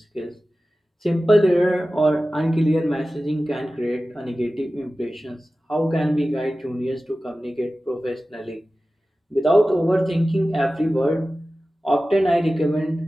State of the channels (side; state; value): both; normal; correlation 0.95